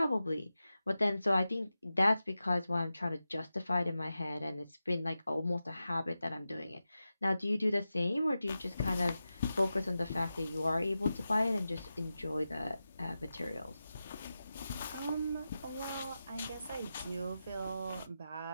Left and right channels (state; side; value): inverted; both; correlation -0.92